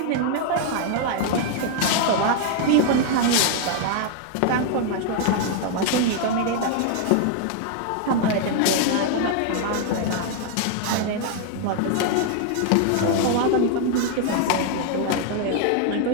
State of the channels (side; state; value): both; different; correlation 0.00